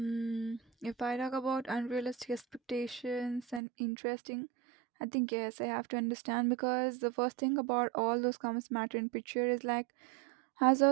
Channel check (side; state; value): left; drops out; at 3.6 s